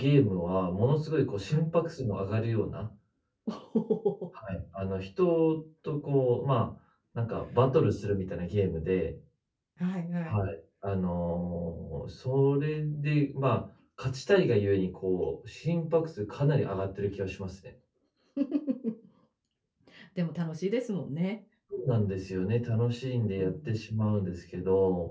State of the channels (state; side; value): identical; both; correlation 1.00